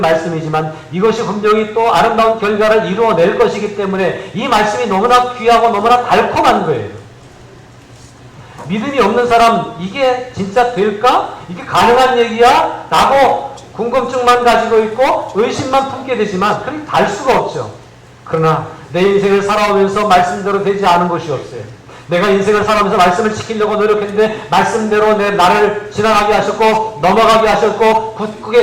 이것이 분명히 또 아름다운 결과를 이루어낼 것이기 때문에 이 말씀이 너무나 귀하고 너무나 달콤한 거예요. 믿음이 없는 사람 이게 진짜 될까? 이게 가능한 얘기야? 라고 궁금증만 가지고 있고 의심만 품게 되지만 그렇게 달 수가 없죠. 그러나 내 인생을 살아오면서 말씀대로 되지 않은 것이 없어요. 내가 인생을 살아오면서 말씀을 지키려고 노력했는데 말씀대로 나를 지나가게 하셨고 넘어가게 하셨고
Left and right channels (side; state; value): both; identical; correlation 1.00